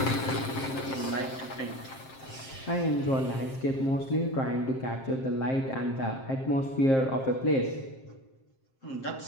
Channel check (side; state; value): right; late; 7.6 ms